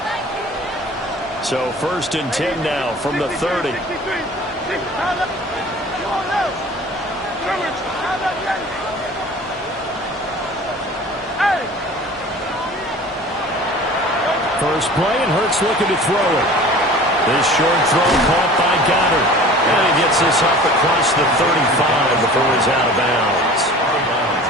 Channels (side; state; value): both; normal; correlation 0.43